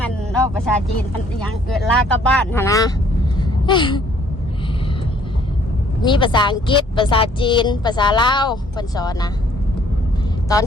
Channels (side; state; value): both; normal; correlation 0.61